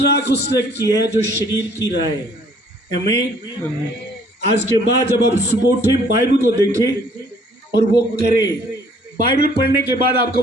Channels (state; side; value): normal; both; correlation 0.59